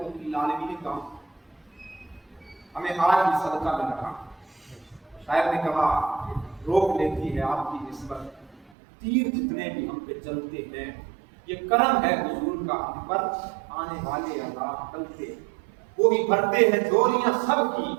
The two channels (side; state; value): left; drops out; at 8.7 s